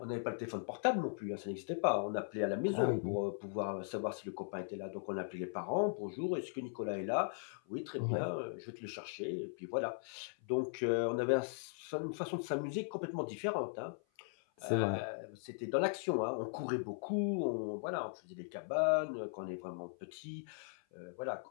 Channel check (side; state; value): right; silent; 52 dB below the other